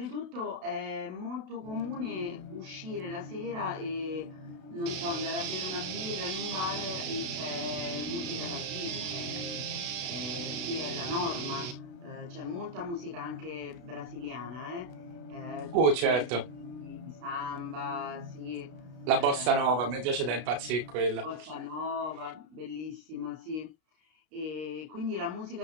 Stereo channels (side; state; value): left; late; 33 ms